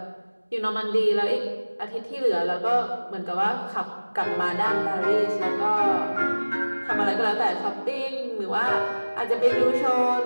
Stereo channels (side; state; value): both; inverted; correlation -1.00